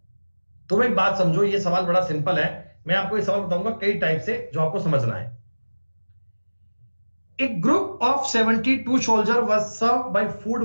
तुम एक बात समझो, ये सवाल बड़ा सिंपल है, मैं आपको ये सवाल बताऊंगा कई टाइप से जो आपको समझना है। A group of 72 soldiers was served by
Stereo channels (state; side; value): inverted; both; correlation -1.00